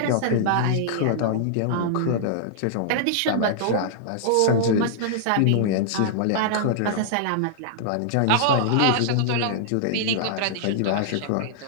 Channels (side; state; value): both; different; correlation -0.01